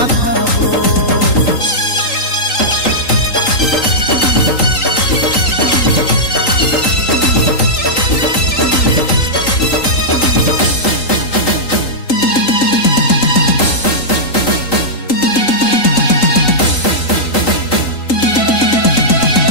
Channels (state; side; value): late; right; 3.8 ms